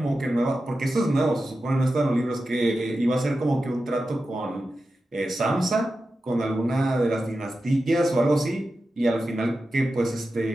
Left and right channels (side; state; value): both; normal; correlation 0.92